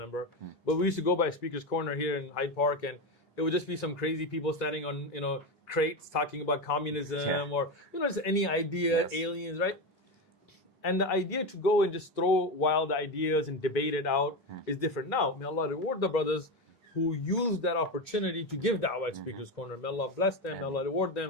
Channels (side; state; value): both; normal; correlation 0.16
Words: but we used to go by Speaker's Corner here in Hyde Park, and it would just be some crazy people standing on, crates talking about communism or, just any idea, aliens, right? And the idea to go and just throw wild ideas and debate it out is different. Now, may Allah reward the brothers who used that opportunity to give da'wah at Speaker's Corner. May Allah bless them, may Allah reward